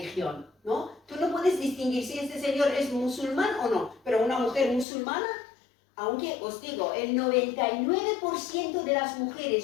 ¿no? Tú no puedes distinguir si este señor es musulmán o no, pero una mujer musulmana, aunque os digo, el 99% de las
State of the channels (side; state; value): right; drops out; at 4.9 s